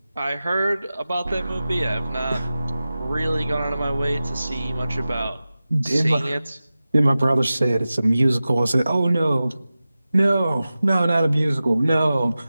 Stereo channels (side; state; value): both; inverted; correlation -0.95